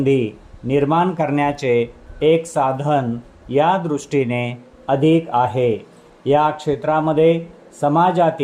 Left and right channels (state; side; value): identical; both; correlation 1.00